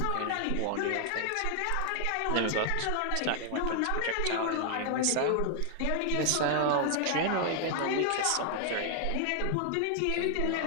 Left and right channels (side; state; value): both; different; correlation 0.00